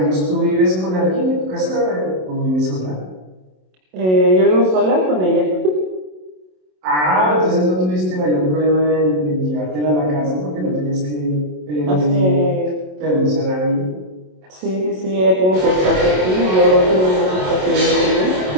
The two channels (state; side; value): late; left; 27 ms